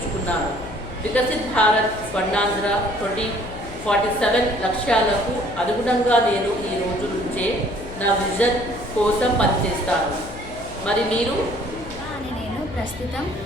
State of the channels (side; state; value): left; noise; hum, 14 dB below the sound